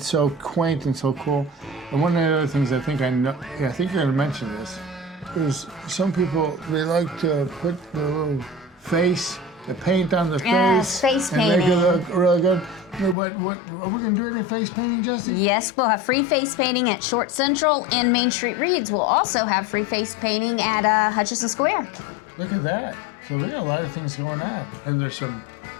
so quaint and so cool. And one of the other things I think you're gonna mention this, is some people, they like to put the little face, the paint on the face painting. And make it look really good. What are we gonna do any face painting, Jesse? Yes, we'll have free face painting at Short Central, and Main Street Reads will also have free face painting at Hutchinson Square. Look at that. So we got a lot of things going on. And there's some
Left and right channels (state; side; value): drops out; right; at 13.2 s